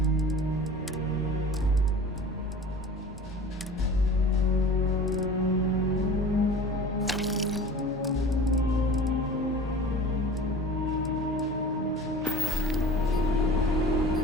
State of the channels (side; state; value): both; normal; correlation 0.40